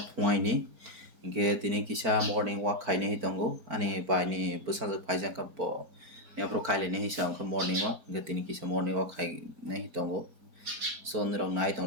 phuaini ge tini kisa morning walk khaine hi tongo ani bai ni bwsajak phaijak ka bo yapro khaile ni hisa ongkha morning walk ge tini kisa morning walk khaine hi tongo so nirok nai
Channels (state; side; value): late; left; 4.4 ms